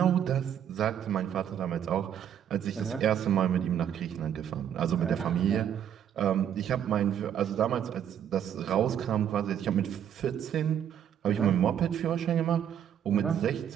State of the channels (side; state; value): left; quieter; 9.4 dB